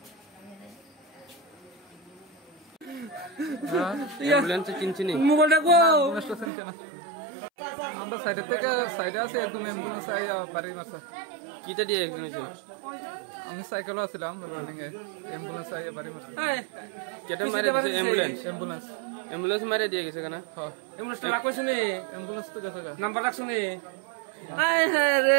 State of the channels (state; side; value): drops out; left; at 6.5 s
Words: অ্যাম্বুলেন্সে চিনছি নি মোবাইলটা গো নষ্ট চিনছে না আমরা সাইডে থেকে সাইডে আছে একদম অ্যাম্বুলেন্স আইয়া বাড়ি মারছে কিটা দিয়ে একজন হয়েছে আমি সাইকেলও আছিলাম রানিং এ অ্যাম্বুলেন্স আইয়া বাড়ি মারছে কেটে মারে দিয়েছে অ্যাম্বুলেন্স অ্যাম্বুলেন্স অ্যাম্বুলেন্স মারে দিয়ে গেছে কেন হ্যাঁ অ্যাম্বুলেন্স রাখো শুনে অ্যাম্বুলেন্স তো গেছে গা নাম্বার রাখ শুনে আই